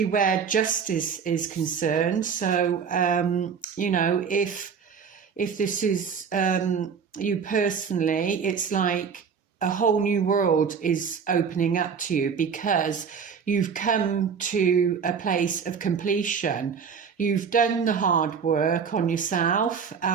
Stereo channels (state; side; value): quieter; left; 6.4 dB